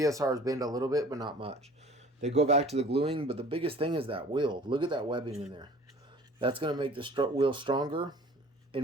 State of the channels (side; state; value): both; normal; correlation 0.48